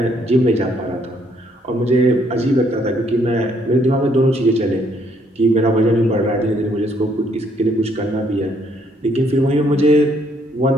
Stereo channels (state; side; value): normal; both; correlation 0.69